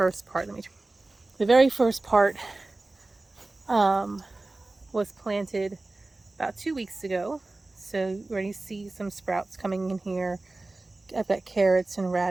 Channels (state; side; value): quieter; left; 3.1 dB